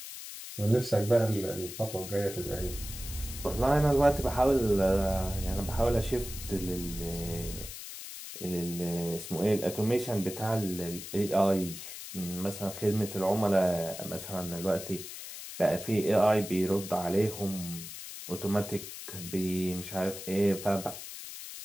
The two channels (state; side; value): noise; left; hiss, 10 dB below the sound